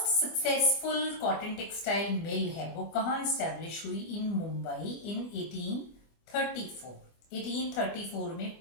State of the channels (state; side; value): late; right; 24 ms